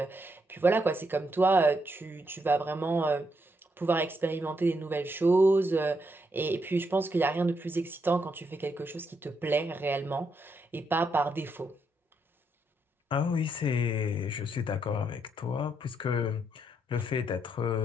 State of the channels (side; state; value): both; normal; correlation 0.78